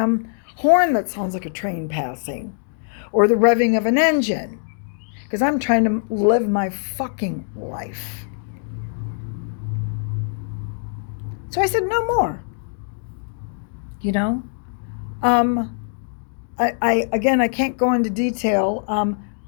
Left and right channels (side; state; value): right; silent; 64 dB below the other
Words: horn that sounds like a train passing or the revving of an engine, because I'm trying to live my fucking life. So I said, no more. I can't go into detail.